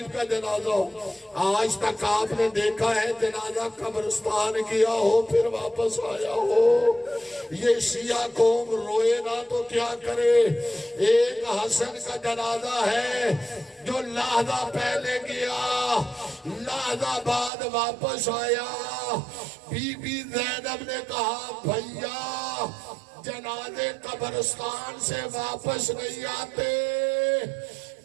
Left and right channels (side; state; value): left; drops out; at 17.5 s